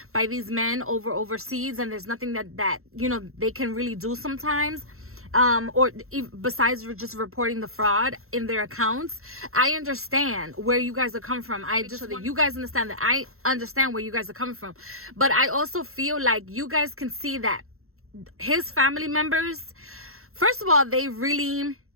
by these men overseas, and there's nothing that you know they can really do sometimes. Or besides just reporting the fraud in their accounts. I understand where you guys are coming from. You guys understand that I understand where you guys are coming from. But I also feel like you guys can see that his family members, first of all, they really,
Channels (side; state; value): left; late; 0.62 ms